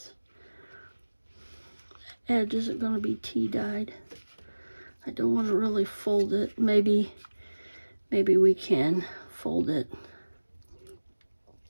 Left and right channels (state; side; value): inverted; both; correlation -1.00